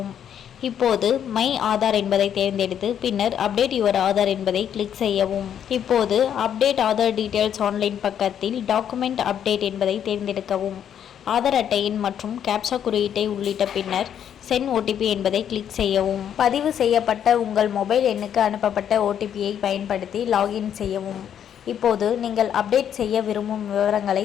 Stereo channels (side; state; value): right; quieter; 9.2 dB